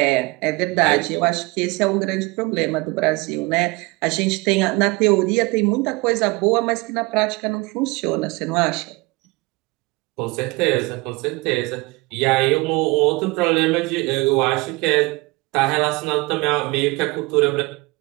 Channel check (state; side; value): quieter; left; 24.7 dB